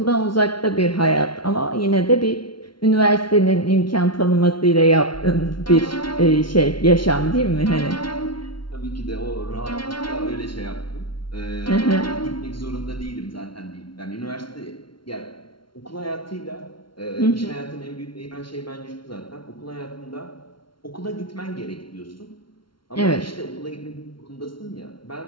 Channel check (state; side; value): late; right; 0.73 ms